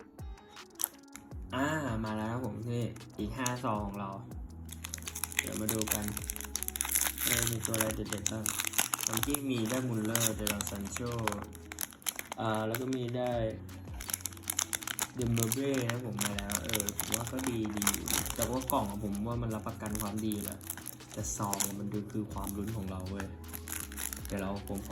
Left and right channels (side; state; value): both; identical; correlation 1.00